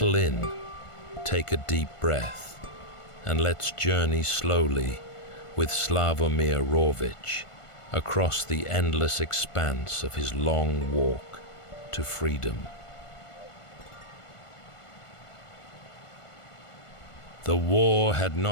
in, take a deep breath, and let's journey slowly with Sławomir Rawicz across the endless expanse of his long walk to freedom. The war had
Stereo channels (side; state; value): right; late; 1.5 ms